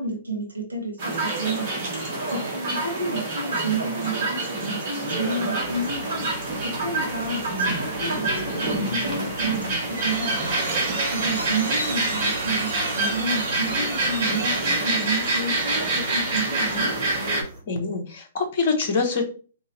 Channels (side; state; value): both; inverted; correlation -0.43